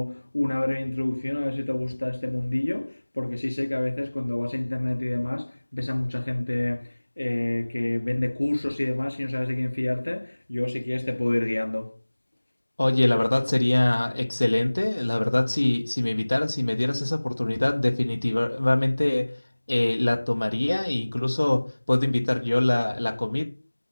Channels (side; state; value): both; inverted; correlation -1.00